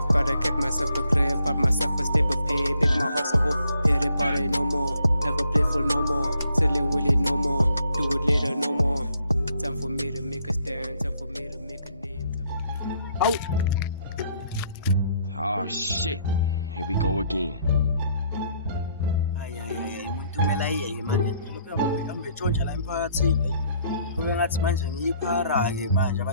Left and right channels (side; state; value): both; inverted; correlation -0.68